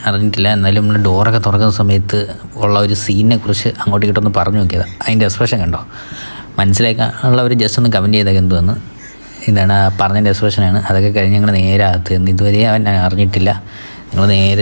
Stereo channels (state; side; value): inverted; both; correlation -1.00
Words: അറിഞ്ഞിട്ടില്ല. എന്നാലും നമ്മൾ ഡോറൊക്കെ തുറക്കുന്ന സമയത്ത് ഉള്ള ഒരു സീനിനെ കുറിച്ച് അങ്ങോട്ട് ഇങ്ങോട്ടൊന്ന് പറഞ്ഞു നോക്കിയത്. അതിൻ്റെ എക്സ്പ്രഷൻ കണ്ടോ, മനസ്സിലാക്കാനുള്ളവർ ജസ്റ്റ് ഒന്ന് കമൻറ്റ് ചെയ്തൊക്കെ എന്തുവന്ന്. ഇതാണ് പറഞ്ഞതിൻ്റെ എക്സ്പ്രഷനാണ്. അതൊക്കെ കഴിഞ്ഞ് ഞങ്ങൾ നേരെ അകത്ത് നിന്ന് ഇതുവരെ അവൻ അറിഞ്ഞിട്ടില്ല. ഞങ്ങൾ